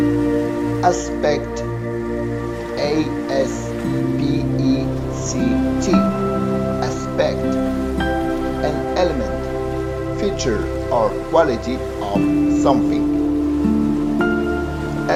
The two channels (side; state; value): both; identical; correlation 1.00